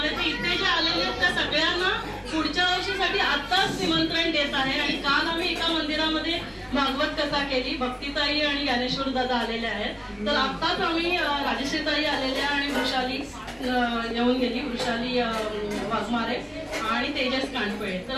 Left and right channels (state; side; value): identical; both; correlation 1.00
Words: आहे. तर इथे जे आलेले आहेत त्या सगळ्यांना पुढच्या वर्षीसाठी आत्ताच निमंत्रण देत आहे. आणि काल आम्ही एका मंदिरामध्ये भागवत कथा केली, भक्तीताई आणि ज्ञानेश्वर दादा आलेले आहेत. तर आत्ताच आम्ही राजश्रीताई आलेल्या आणि वृषाली येऊन गेली, वृषाली वाघमारे आणि तेजस कांडपळे. तर